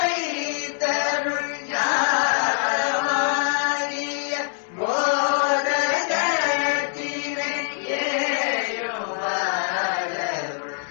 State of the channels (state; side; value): silent; right; 63 dB below the other